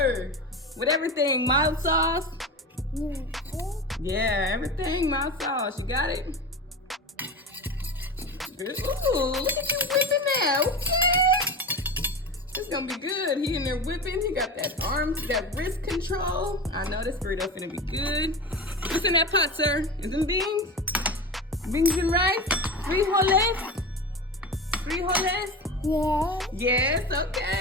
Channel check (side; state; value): both; normal; correlation 0.27